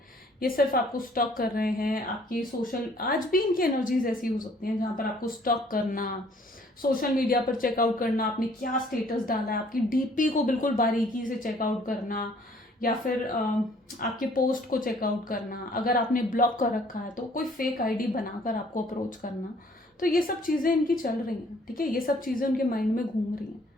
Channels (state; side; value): normal; both; correlation 0.59